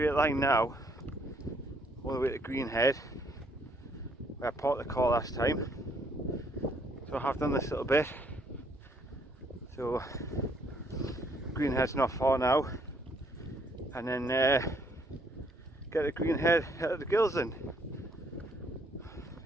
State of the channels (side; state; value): both; normal; correlation 0.67